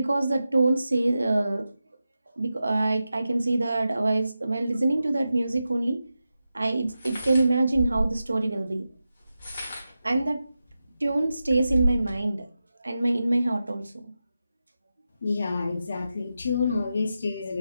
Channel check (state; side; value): inverted; both; correlation -0.91